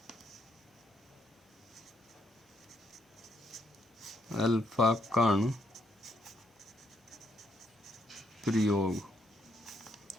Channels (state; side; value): normal; both; correlation 0.74